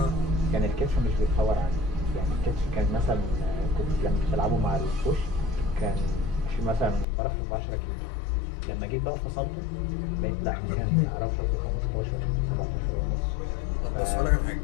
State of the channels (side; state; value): right; drops out; at 7.1 s